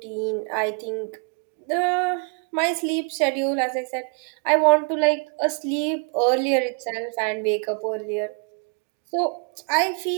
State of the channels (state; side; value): quieter; left; 39.3 dB